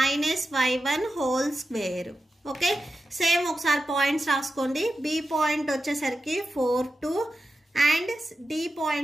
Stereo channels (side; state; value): both; normal; correlation 0.91